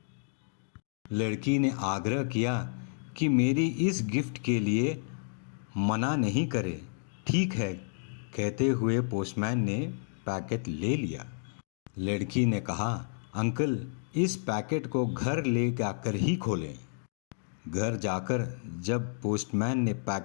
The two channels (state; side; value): silent; right; digital silence